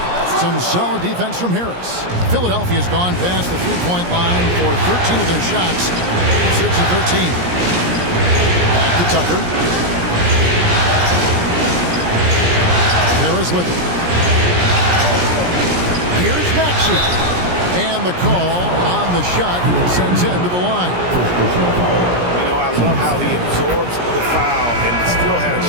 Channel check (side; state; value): left; late; 17 ms